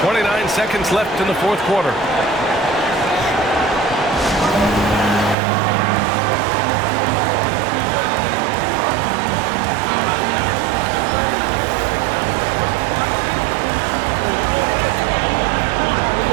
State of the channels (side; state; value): left; drops out; at 5.4 s